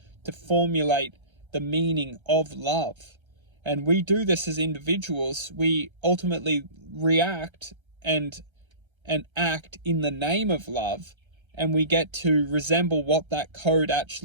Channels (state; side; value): late; left; 1.3 ms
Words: to formulate the meaning of love. And we do this as individuals. We ultimately react and act in the name of love, and we get to resemble what that code